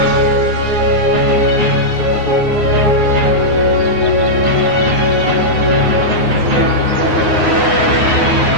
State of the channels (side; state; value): left; late; 9.5 ms